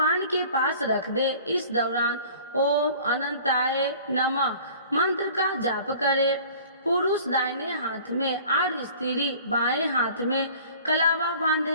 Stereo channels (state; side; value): inverted; both; correlation -0.47